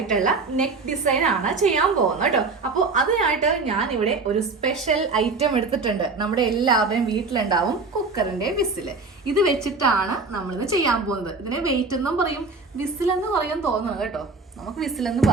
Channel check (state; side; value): quieter; left; 3.9 dB